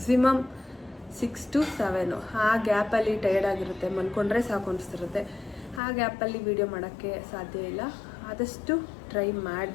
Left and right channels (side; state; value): right; drops out; at 5.8 s